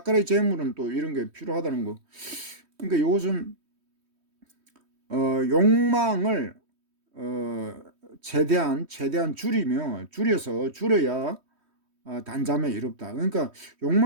재물은 또 이런 게 필요하다는 거. 그러니까 이것은 욕망을 최대한 줄여야 단잠에 이롭다. 그러니까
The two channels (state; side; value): late; left; 3.1 ms